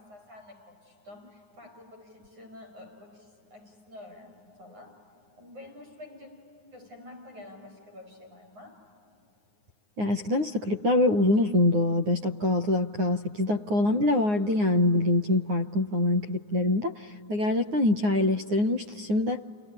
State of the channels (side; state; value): left; late; 9.6 ms